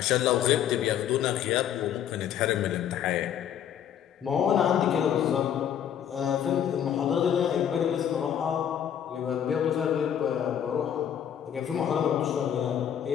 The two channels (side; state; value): right; quieter; 9.5 dB